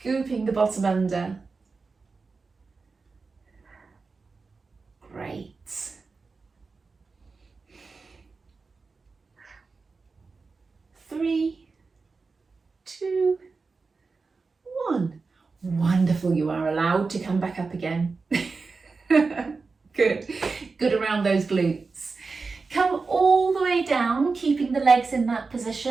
the bottom under. Great. 3, 2, 1. Wonderful, you are allowed to come back up again. Good. Good around those glutes. Come all the way down, keeping the legs in that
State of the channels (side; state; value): left; quieter; 4.3 dB